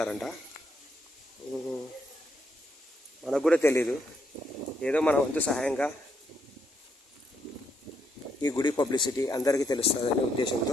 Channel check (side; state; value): both; normal; correlation 0.77